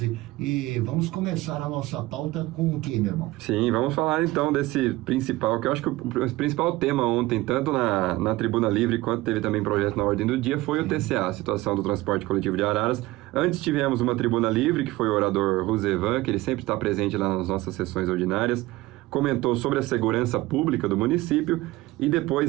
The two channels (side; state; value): left; quieter; 19.0 dB